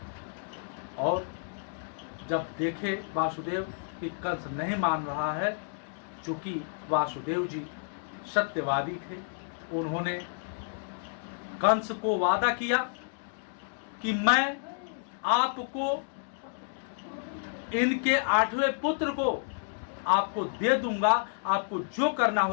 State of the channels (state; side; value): silent; right; digital silence